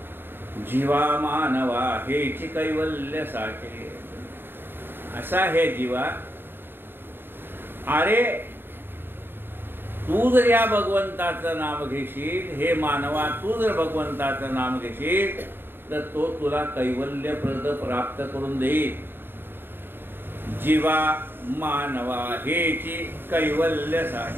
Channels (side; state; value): left; late; 0.10 ms